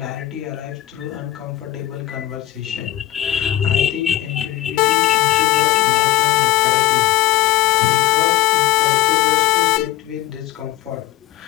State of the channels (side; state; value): right; quieter; 15.1 dB